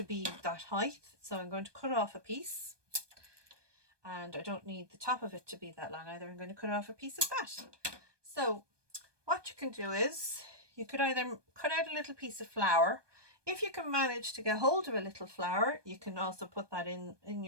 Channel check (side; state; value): left; late; 1.2 ms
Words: be that height, so I'm going to cut off a piece, and I don't need the top of it to be that long either. I'm going to cut off a piece of that. So what you can do is, you could either cut out a little piece of flour. If you can manage to get hold of a little flour, you can also put that in